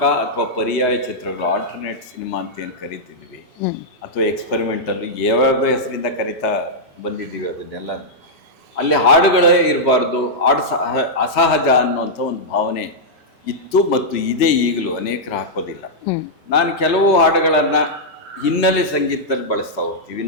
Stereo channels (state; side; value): normal; both; correlation -0.08